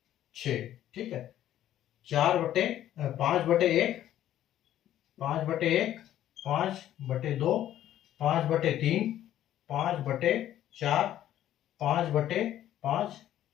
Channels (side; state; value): right; quieter; 12.2 dB